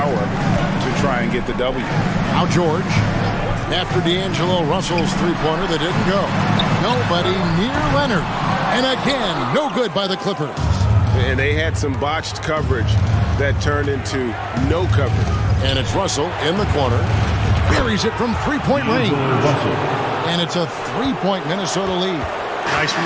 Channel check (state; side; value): identical; both; correlation 1.00